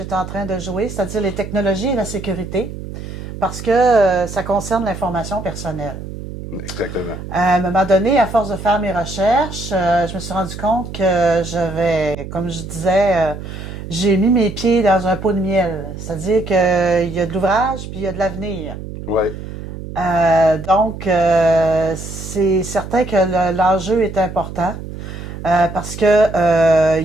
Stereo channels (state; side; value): noise; right; hum, 10 dB below the sound